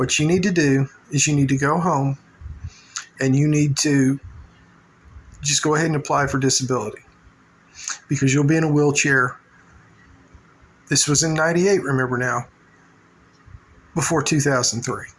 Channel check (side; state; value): both; identical; correlation 1.00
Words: you need to do is you need to go home and you need to just go ahead and apply for disability, because you'll be in a wheelchair. This was in '98, remember now, before 2003.